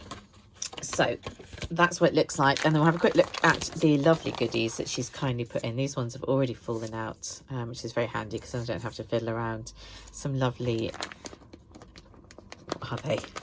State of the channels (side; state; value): both; identical; correlation 1.00